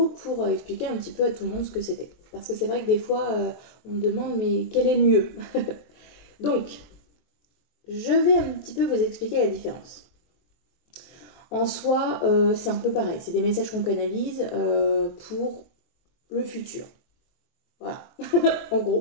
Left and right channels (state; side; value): late; right; 23 ms